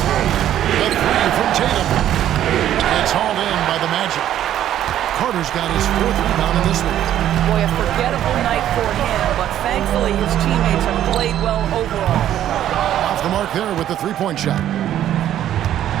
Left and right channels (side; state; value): left; quieter; 11.6 dB